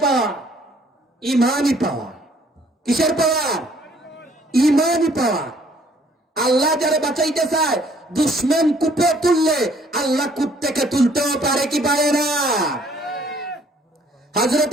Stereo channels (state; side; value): normal; both; correlation 0.61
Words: পাওয়ার? ইমানি পাওয়ার। কিসের পাওয়ার? ইমানি পাওয়ার। আল্লাহ যারা বাঁচাইতে চায়, দুশ্মন কূপে তুললে আল্লাহ কূপ থেকে তুলতেও পারে কি পারে না?